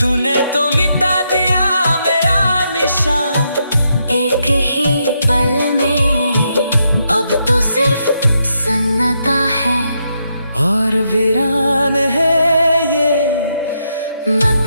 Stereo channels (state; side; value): inverted; both; correlation -0.80